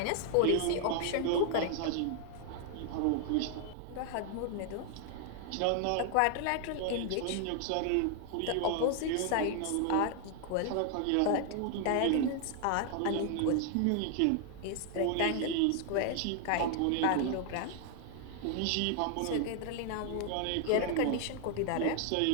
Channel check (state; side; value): different; both; correlation 0.00